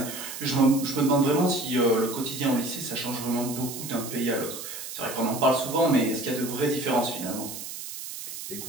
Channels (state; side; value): noise; right; hiss, 9 dB below the sound